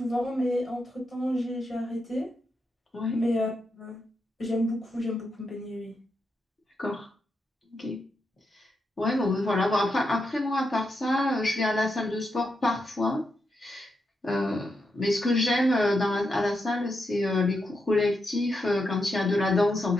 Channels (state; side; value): normal; both; correlation 0.84